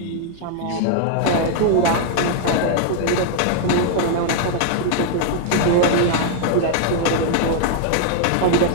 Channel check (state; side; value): different; both; correlation 0.00